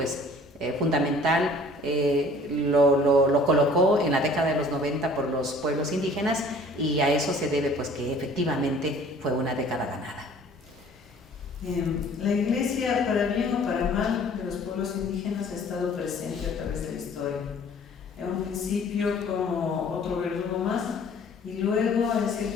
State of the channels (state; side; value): normal; both; correlation 0.51